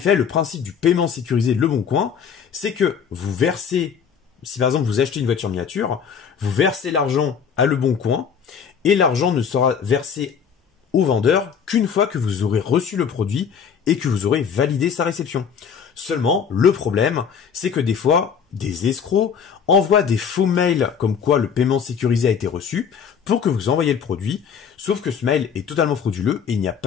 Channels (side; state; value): right; quieter; 7.0 dB